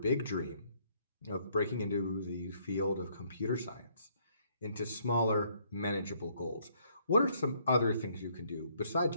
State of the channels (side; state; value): both; inverted; correlation -0.67